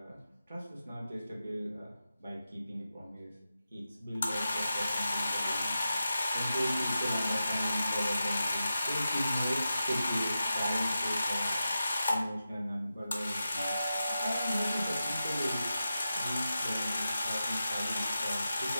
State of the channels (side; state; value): both; inverted; correlation -0.90